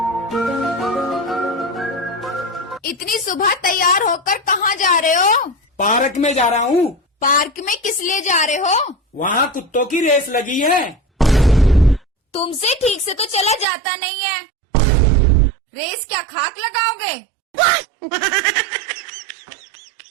इतनी सुबह तैयार होकर कहाँ जा रहे हो? पार्क में जा रहा हूँ। पार्क में किस लिए जा रहे हो? वहाँ कुत्तों की रेस लगी है। तुमसे ठीक से तो चला जाता नहीं है। रेस क्या खाक लगाओगे?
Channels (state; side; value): drops out; left; at 13.7 s